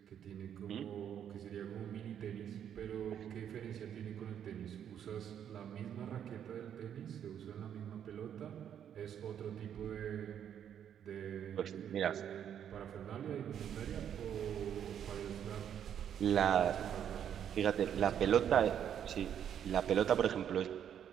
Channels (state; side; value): quieter; left; 9.2 dB